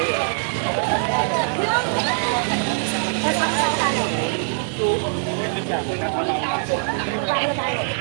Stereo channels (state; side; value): silent; left; digital silence